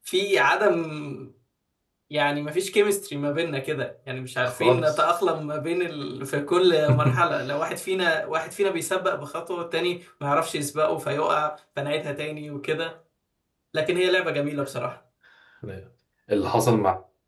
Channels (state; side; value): identical; both; correlation 1.00